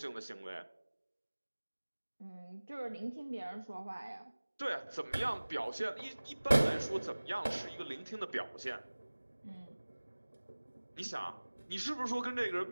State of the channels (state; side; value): inverted; both; correlation -1.00